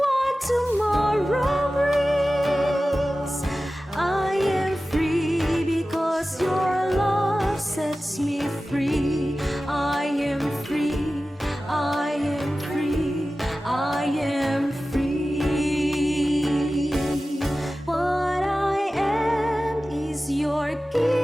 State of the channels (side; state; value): both; normal; correlation 0.95